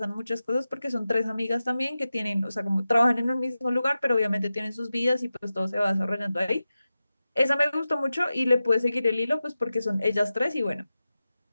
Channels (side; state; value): both; inverted; correlation -0.93